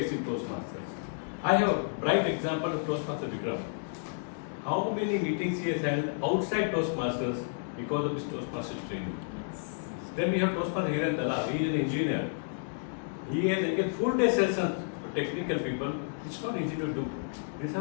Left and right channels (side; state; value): right; silent; digital silence